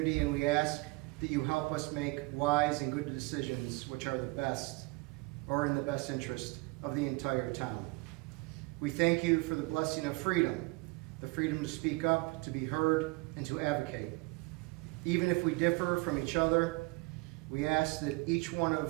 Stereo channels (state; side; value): quieter; left; 25.2 dB